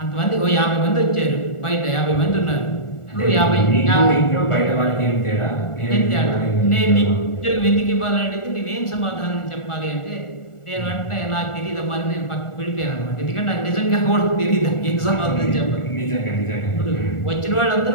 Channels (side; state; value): right; late; 1.4 ms